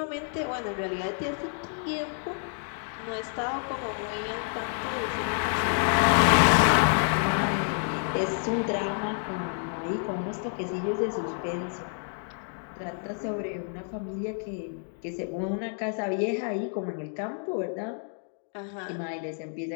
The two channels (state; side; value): silent; right; 56 dB below the other